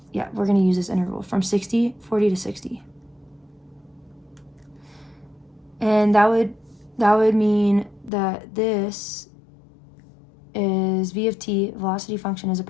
we're going to use this interval from 40 to 60. And that would mean that this is V of t, velocity function is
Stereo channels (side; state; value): right; drops out; at 8.1 s